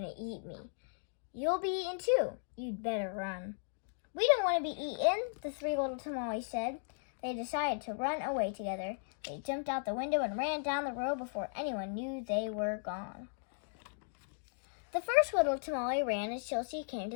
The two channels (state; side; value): silent; right; digital silence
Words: to eat me. You'll be eaten too. You'd better run. We don't want to be eaten, the three little tamales said. They decided to run away together. They jumped out the window and ran down the road before anyone knew they were gone. The first little tamale ran until she came